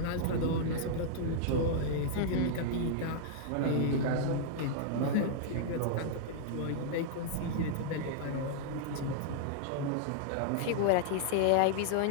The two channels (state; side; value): different; both; correlation -0.01